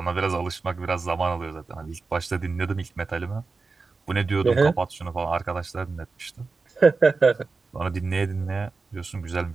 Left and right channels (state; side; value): quieter; left; 4.2 dB